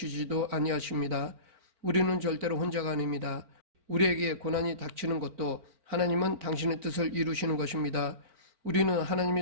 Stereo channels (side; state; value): left; late; 4.4 ms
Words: 아니하십니다. 우리는 절대로 혼자가 아닙니다. 우리에게 고난이 닥치는 것도 하나님은 당신의 뜻을 이루시는 것입니다. 우리는